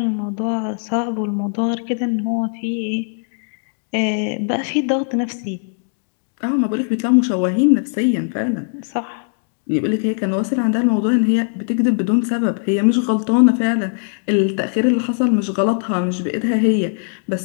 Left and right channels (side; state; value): right; silent; 64 dB below the other